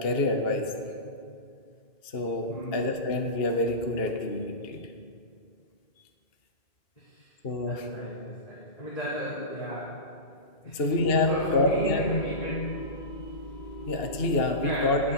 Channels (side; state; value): right; late; 2.7 ms